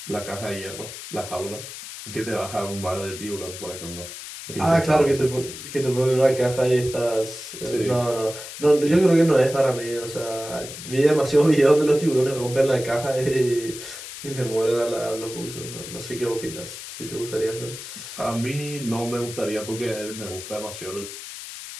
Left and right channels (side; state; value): left; noise; hiss, 11 dB below the sound